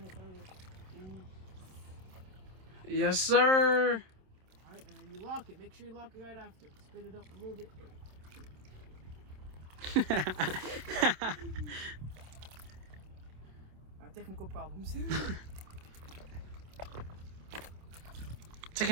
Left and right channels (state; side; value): late; left; 27 ms